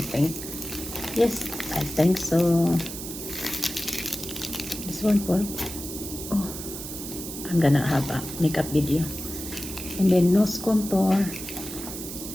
yes, I think so. This one for, oh, I'm gonna have a makeup video. And then nose contour.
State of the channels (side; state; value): right; noise; hiss, 9 dB below the sound